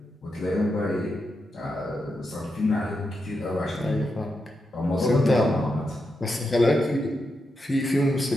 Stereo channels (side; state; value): both; normal; correlation 0.86